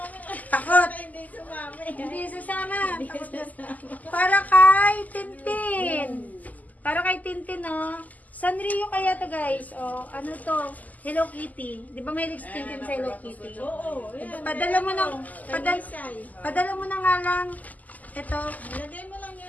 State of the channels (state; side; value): late; right; 0.078 ms